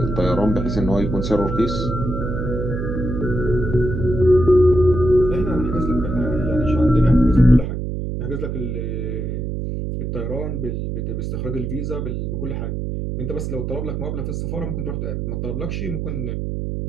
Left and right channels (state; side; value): noise; right; hum, 3 dB below the sound